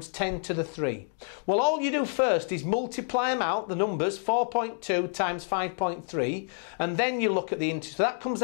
10 to the 3. Well, all you do first is multiply them out, the numbers, 4.2 times 5.3, and then you look at the integers. So that comes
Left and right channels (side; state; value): right; silent; digital silence